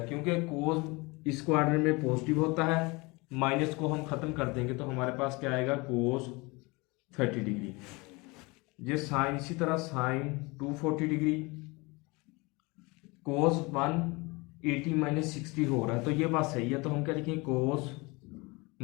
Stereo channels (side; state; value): right; quieter; 25.7 dB